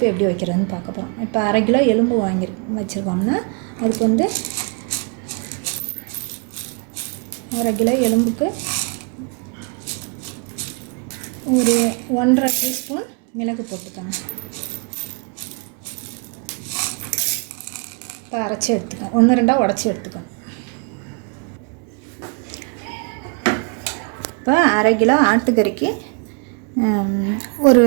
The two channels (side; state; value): left; quieter; 36.3 dB